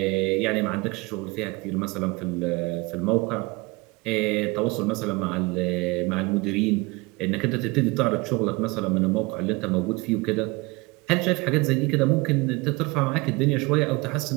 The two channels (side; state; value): left; quieter; 24.8 dB